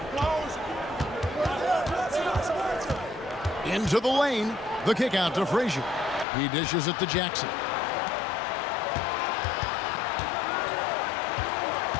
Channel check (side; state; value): right; drops out; at 6.2 s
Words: Into the lane. The kick out to Frazier. He dishes it to Jackson.